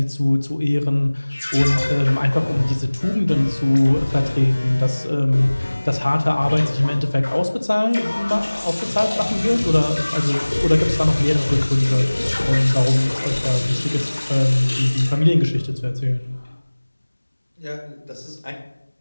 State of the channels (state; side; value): inverted; both; correlation -1.00